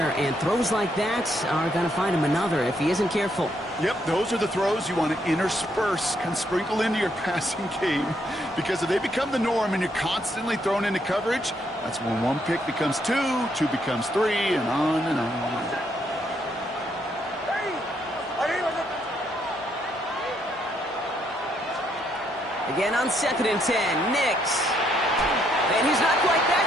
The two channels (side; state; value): both; normal; correlation 0.74